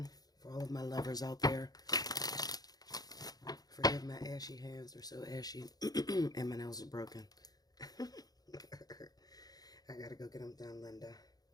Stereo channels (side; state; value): right; late; 0.19 ms